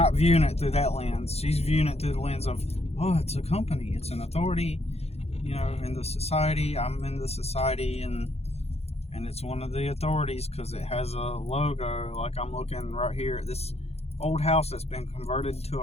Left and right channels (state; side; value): late; right; 0.30 ms